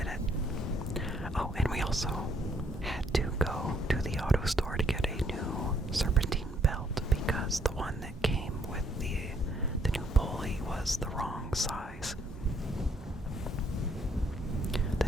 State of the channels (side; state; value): both; normal; correlation 0.69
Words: was the wrong size. The